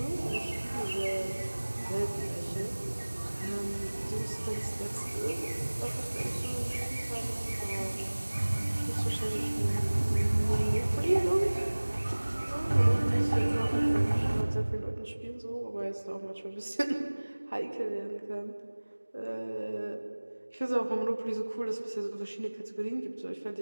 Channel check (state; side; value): inverted; both; correlation -1.00